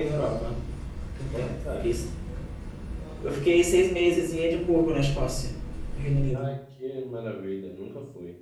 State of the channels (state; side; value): identical; both; correlation 1.00